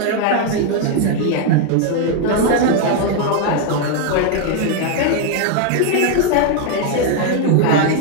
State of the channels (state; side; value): different; both; correlation 0.00